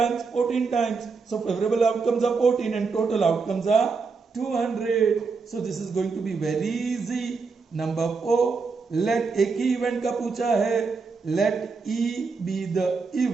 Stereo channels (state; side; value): quieter; left; 4.7 dB